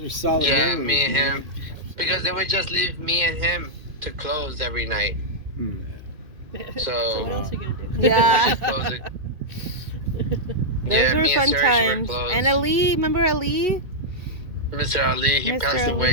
are solid yeah, memories, me and man. him, because they would just leave me and him to close every night. Hmm. So what So else are you gonna do? we Yeah. just closed it. Those Yeah, were me and fun Sergio were times. close. And Ali, remember Ali? Mr. Ali, he Mr. passed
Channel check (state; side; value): late; left; 2.1 ms